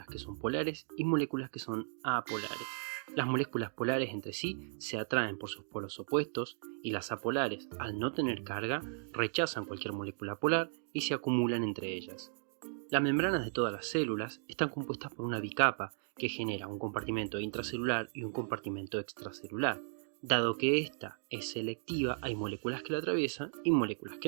que son polares y moléculas que son apolares. Las moléculas polares entre sí se atraen por sus polos opuestos y las apolares, al no tener carga, rechazan cualquier molécula polar y se acumulan entre ellas. Las membranas de todas las células están compuestas por una bicapa que genera un compartimento intracelular y un compartimento extracelular. Dado que esta es selectiva, hay moléculas que la atraviesan y moléculas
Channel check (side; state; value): left; silent; digital silence